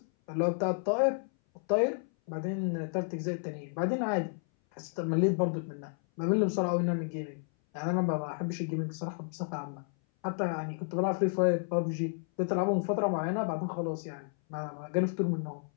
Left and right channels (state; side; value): silent; right; 57 dB below the other